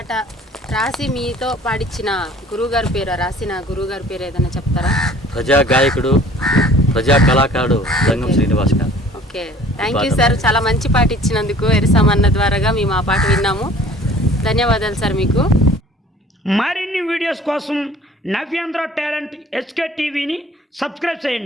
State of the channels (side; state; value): both; normal; correlation 0.50